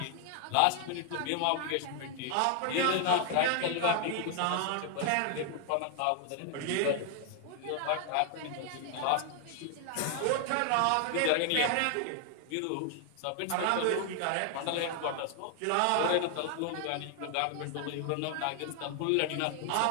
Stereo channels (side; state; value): both; different; correlation 0.00